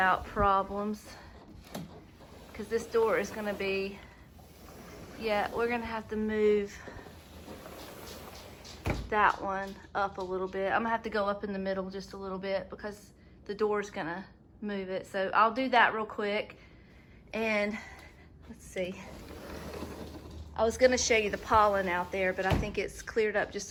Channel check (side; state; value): both; identical; correlation 1.00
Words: problems, because this door is gonna be, yeah, we're gonna have to move that one up a little bit. I'm gonna have to go up in the middle just a little bit because the door's gonna move it. So I'll do that real quick. And let's see. I was gonna show you the pollen out there, but I think it's cleared up